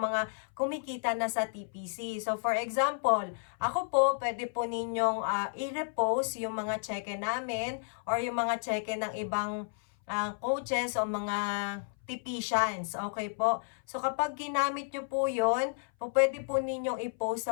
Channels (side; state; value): right; silent; 57 dB below the other